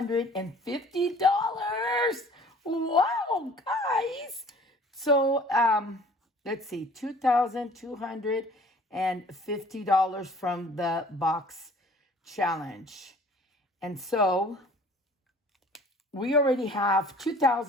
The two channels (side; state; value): both; normal; correlation 0.51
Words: Wow, guys. So let's see, $2,250 from the box challenge. And so we already have